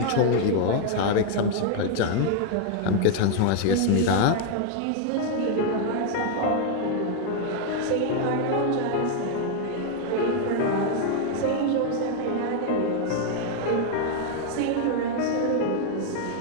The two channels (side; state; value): both; different; correlation 0.00